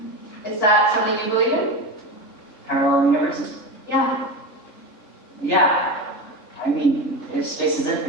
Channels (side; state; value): right; late; 3.6 ms